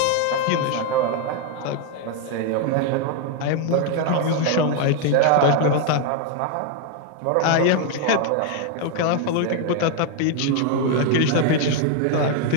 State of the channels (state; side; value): different; both; correlation 0.01